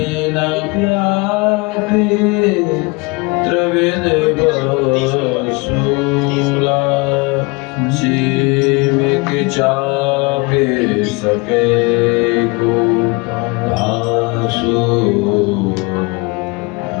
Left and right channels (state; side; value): quieter; right; 27.6 dB